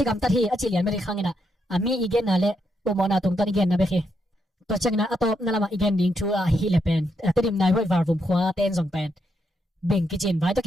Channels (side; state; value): both; normal; correlation 0.79